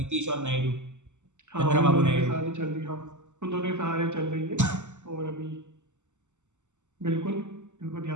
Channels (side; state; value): left; late; 0.84 ms